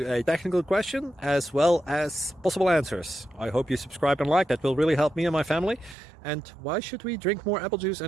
a technical question as well as possible answers. I hope you subscribe and like, that will really help me and my family. And why should we drink more apple juice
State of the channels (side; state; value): left; drops out; at 6.0 s